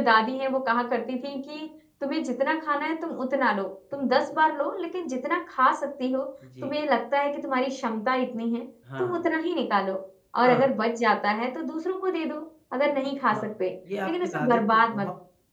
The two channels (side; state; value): both; identical; correlation 1.00